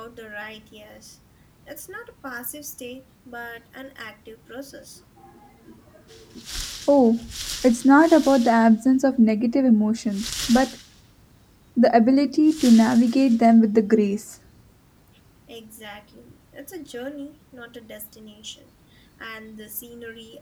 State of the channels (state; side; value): identical; both; correlation 1.00